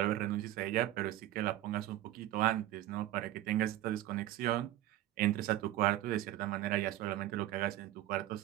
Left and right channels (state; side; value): quieter; left; 14.3 dB